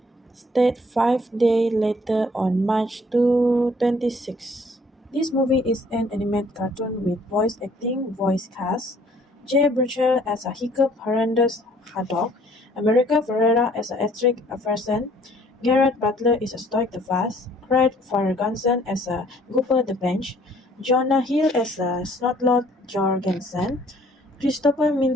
State 5 days later on March 26. This movie is an animated cartoon with voice cast. Jay Burchell as a Hiccup Horrendous Haddock, America Ferrera as a Estric Averson, Garrett Butler is a Stoic the Fast, Craig Ferguson as a Gooper the Bench, Jonah Hill as a Snotlord Jorgensen, Christopher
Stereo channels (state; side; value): normal; both; correlation 0.59